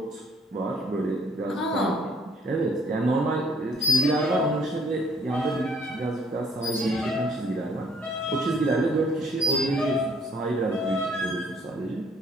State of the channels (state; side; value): normal; both; correlation 0.63